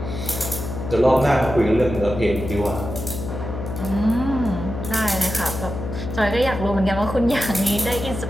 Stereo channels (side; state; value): left; noise; hum, 7 dB below the sound